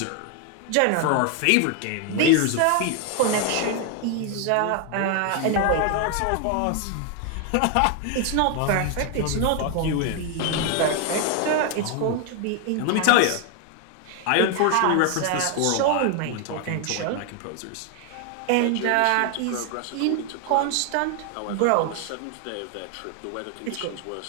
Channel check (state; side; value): different; both; correlation 0.01